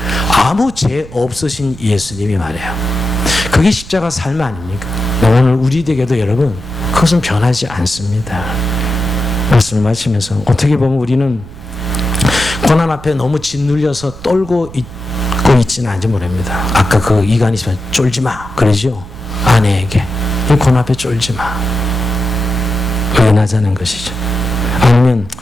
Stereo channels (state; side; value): noise; right; rumble, 17 dB below the sound